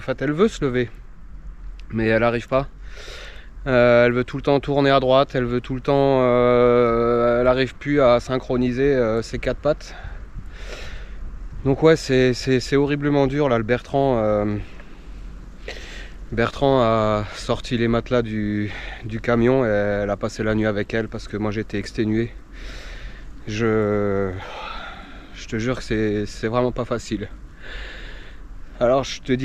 fait elle veut se lever, mais elle arrive pas. Elle veut tout le temps tourner à droite, elle veut tout le temps, elle n'arrive plus à synchroniser ses 4 pattes. Donc ouais, c'est horriblement dur là. Le Bertrand a sorti les matelas du camion et elle a passé la nuit avec elle parce que moi j'étais exténué. Je te jure que c'est vraiment pas facile. Alors je te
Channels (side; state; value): both; identical; correlation 1.00